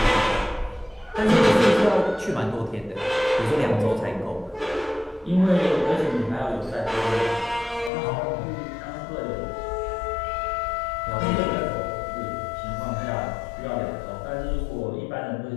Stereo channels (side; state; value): right; drops out; at 7.9 s